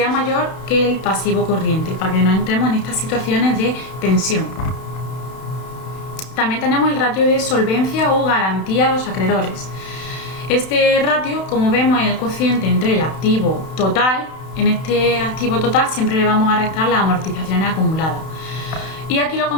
mayor que el pasivo corriente, para que no entremos en estas situaciones de tensión. También tenemos el ratio de solvencia o garantía a los acreedores. Este ratio, como vemos, es el cociente entre el activo total. En este activo total siempre le vamos a restar las amortizaciones acumuladas. Y aquí lo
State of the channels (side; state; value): right; late; 31 ms